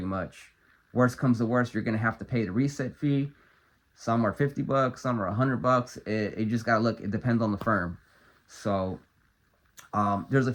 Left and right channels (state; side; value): identical; both; correlation 1.00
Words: much. Worst comes to worst, you're gonna have to pay the reset fee. Some are 50 bucks, some are 100 bucks. It just gotta look, it depends on the firm. So there's a